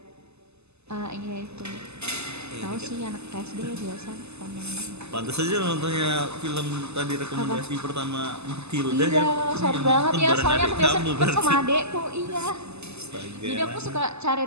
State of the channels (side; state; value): left; late; 0.80 ms